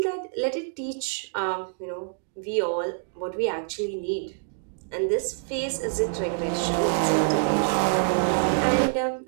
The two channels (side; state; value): left; silent; digital silence